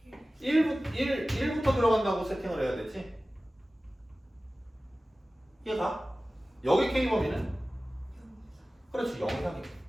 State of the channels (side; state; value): both; normal; correlation 0.96